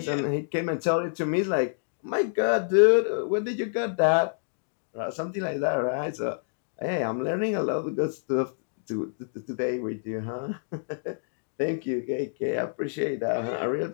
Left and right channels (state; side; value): silent; right; digital silence